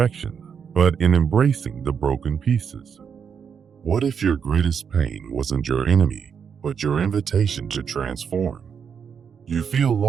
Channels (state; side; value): quieter; left; 7.0 dB